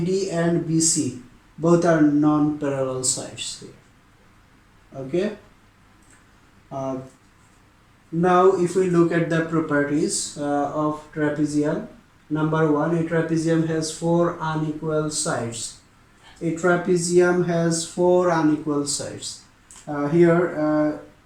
BC both are non-parallel sides here. Okay. Now if we look at the properties of trapezium, number one, a trapezium has four unequal sides. A trapezium has four unequal sides. Here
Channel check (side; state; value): both; identical; correlation 1.00